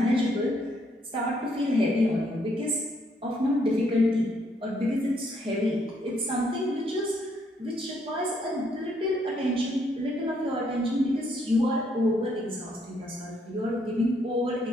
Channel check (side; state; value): both; normal; correlation 0.71